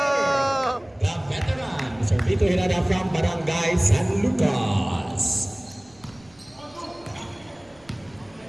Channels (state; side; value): noise; right; rumble, 29 dB below the sound